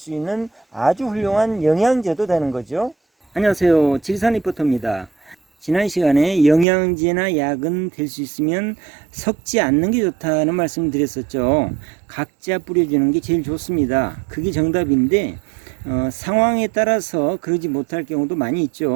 있는 아주 훌륭한 영양제도 되는 거죠. 안녕하세요, 지리산 리포터입니다. 지난 시간에 영양제나 약은 될 수 있으면 섞지 않는 게 좋다는 말씀을 드렸었죠. 각자 뿌려주는 게 제일 좋습니다. 그게 정답인데 상황에 따라서 그러지 못할 경우도 많이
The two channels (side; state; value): left; drops out; at 6.7 s